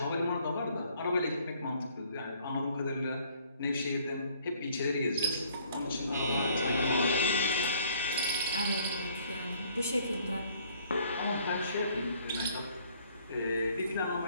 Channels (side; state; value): both; inverted; correlation -0.62